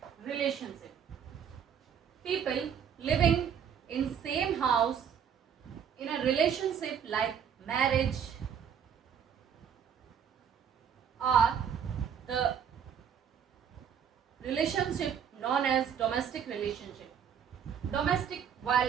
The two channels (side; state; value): left; quieter; 8.0 dB